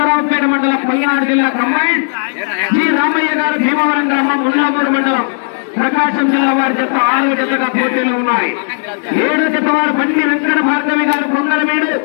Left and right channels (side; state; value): right; silent; digital silence